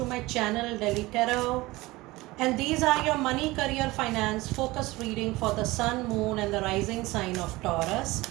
my channel Delhi Tarot, and these are your money, career, finance focus reading for the sun, moon and the rising sign of Taurus.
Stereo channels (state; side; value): quieter; left; 20.4 dB